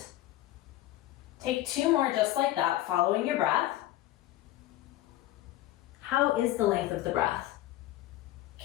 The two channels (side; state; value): right; quieter; 15.1 dB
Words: Take 2 more just like that, following your breath. How is the length of the breath?